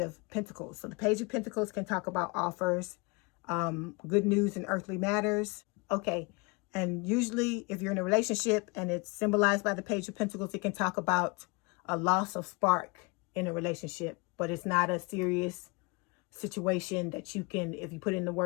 Pentacles. So the Page of Pentacles can talk about offers, good news in earthly matters. Okay, and usually if you're in a relationship and it's symbolized by the Page of Pentacles, it can talk about a loss of spark in a relationship, but it's not a serious situation that you can, if you put in the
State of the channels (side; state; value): right; quieter; 28.6 dB